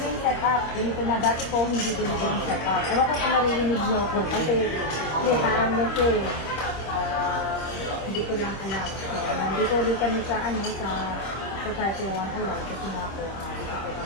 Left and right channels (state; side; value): late; right; 26 ms